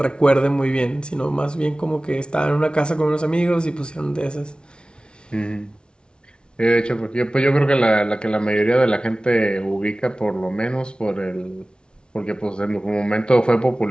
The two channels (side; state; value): right; late; 0.056 ms